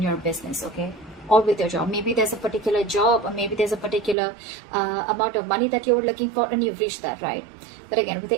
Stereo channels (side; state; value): left; drops out; at 4.2 s